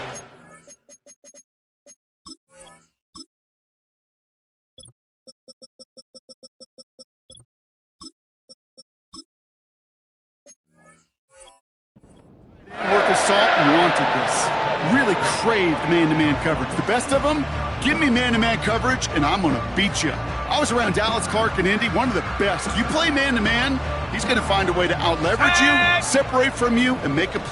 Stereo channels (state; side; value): identical; both; correlation 1.00